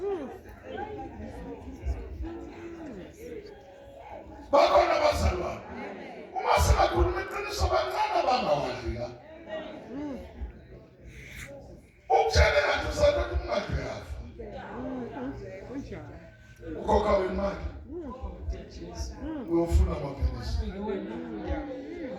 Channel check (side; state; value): both; identical; correlation 1.00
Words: bakhona abazalwane uma singakhuluma iqiniso bancane abangawadli la ukutshele ngathi usathatha umngadi yafa ukhokha wemali uyofuna amaphilisi